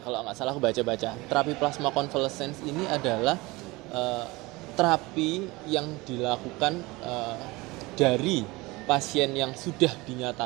aku baca-baca, terapi plasma convalescence ini adalah terapi yang dilakukan dari pasien yang sudah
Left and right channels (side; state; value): left; quieter; 22.4 dB